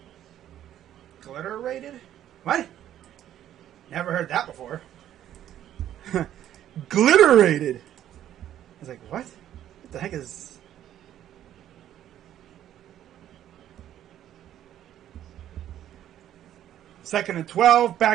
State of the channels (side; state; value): left; quieter; 11.5 dB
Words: glitter rated? What? Never heard that before. Glitter rated! I was like, what? What the heck is. Second and 12,